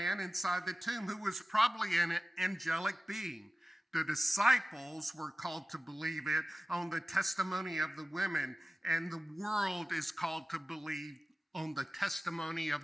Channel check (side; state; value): both; normal; correlation 0.97